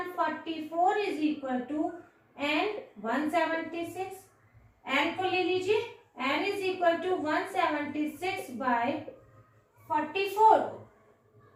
is equal to n176। n को ले लीजिए, n is equal to 176 by 44।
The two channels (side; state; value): both; identical; correlation 1.00